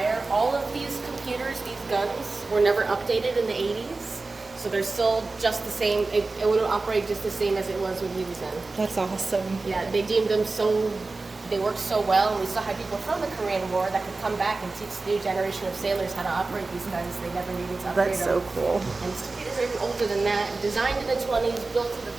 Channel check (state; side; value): quieter; left; 3.5 dB